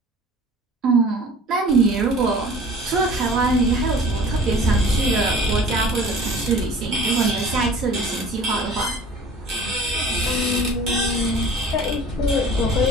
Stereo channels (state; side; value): normal; both; correlation 0.45